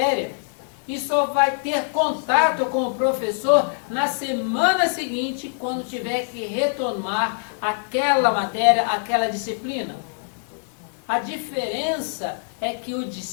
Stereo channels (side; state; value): right; silent; digital silence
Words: E só vai ter contato com o professor na semana seguinte, quando tiver que retomar aquela matéria, aquela disciplina. A diferença é que o